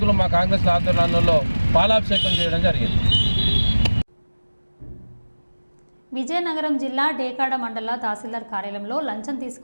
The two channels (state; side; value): inverted; both; correlation -1.00